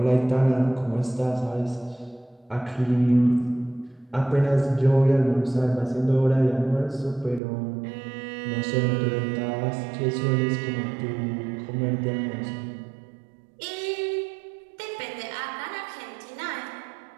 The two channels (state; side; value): drops out; left; at 7.4 s